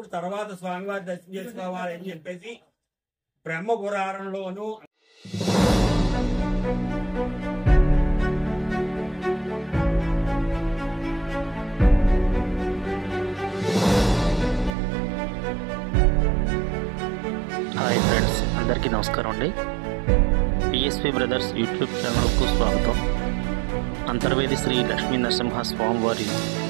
తర్వాత స్వామివారి దర్శనం చేసుకోవాలి అని చెప్పేసి బ్రహ్మ పురాణంలోను హాయ్ ఫ్రెండ్స్, అందరికీ నమస్కారం అండి. పిఎస్పి బ్రదర్స్ యూట్యూబ్ ఛానల్కు స్వాగతం. అంతర్వేది శ్రీ లక్ష్మీ నరసింహ స్వామివారి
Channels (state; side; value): drops out; left; at 14.7 s